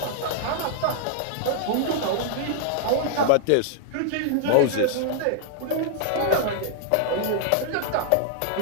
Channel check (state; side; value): different; both; correlation -0.01